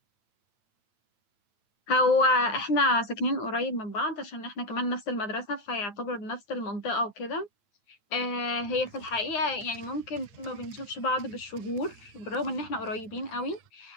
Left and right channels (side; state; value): right; late; 9.1 ms